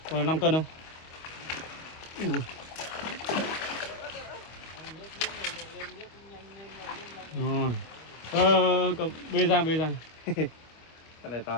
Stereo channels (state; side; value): late; right; 25 ms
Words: Con này 5 cân không? Ui. Rồi. Bê ra. Con này